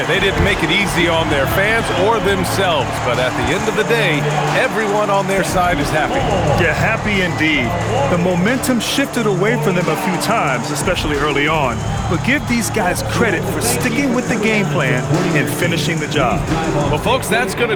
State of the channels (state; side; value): identical; both; correlation 1.00